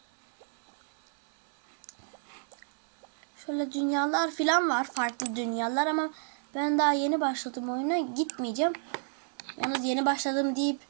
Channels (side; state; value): left; silent; 58 dB below the other